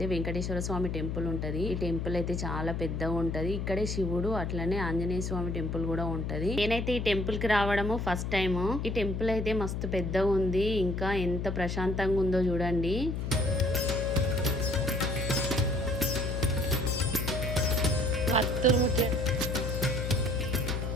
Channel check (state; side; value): noise; left; hum, 2 dB below the sound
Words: వెంకటేశ్వర స్వామి టెంపుల్ ఉంటుంది. ఈ టెంపుల్ అయితే చాలా పెద్దగా ఉంటది. ఇక్కడే శివుడు అట్లనే ఆంజనేయ స్వామి టెంపుల్ కూడా ఉంటది. నేనైతే ఈ టెంపుల్ కి రావడము ఫస్ట్ టైం. ఈ టెంపుల్ అయితే మస్తు పెద్దగా ఉంది. ఇంకా ఎంత ప్రశాంతంగా ఉందో చూడండి.